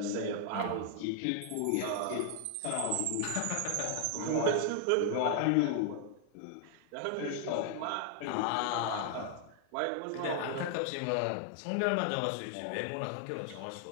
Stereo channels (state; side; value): different; both; correlation 0.00